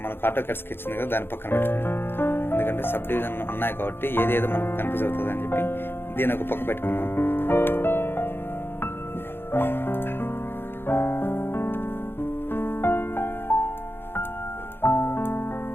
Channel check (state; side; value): late; right; 0.10 ms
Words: మనకు ఆటో క్యాడ్ స్కెచ్ ఉంది కదా, దాని పక్కన పెట్టుకున్నాం. ఎందుకంటే సబ్ డివిజన్ ఉన్నాయి కాబట్టి ఏదేదో మనకు కన్ఫ్యూజ్ అవుతుంది అని చెప్పి దీని ఒక పక్క పెట్టుకున్నాం.